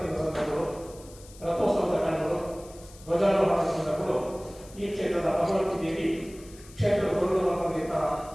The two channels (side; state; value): left; noise; hiss, 21 dB below the sound